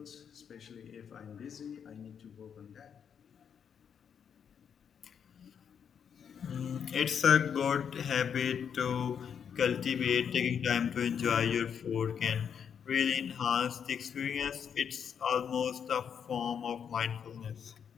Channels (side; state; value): right; quieter; 7.6 dB